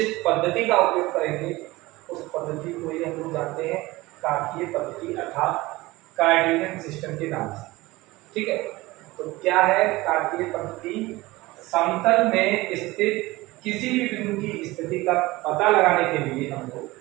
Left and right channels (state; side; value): quieter; left; 20.1 dB